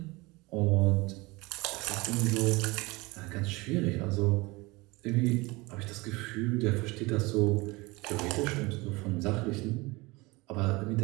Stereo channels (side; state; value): left; quieter; 23.5 dB